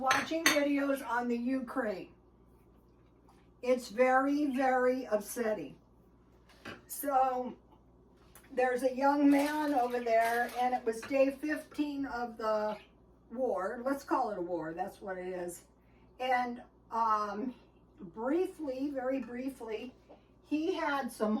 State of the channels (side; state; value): both; identical; correlation 1.00